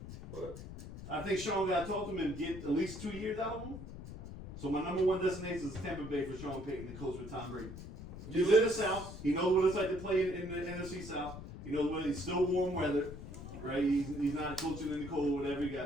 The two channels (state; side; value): noise; left; rumble, 11 dB below the sound